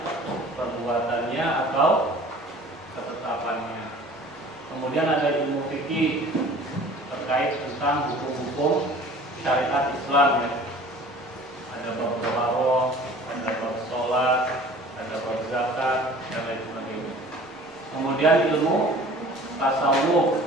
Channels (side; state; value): both; normal; correlation 0.46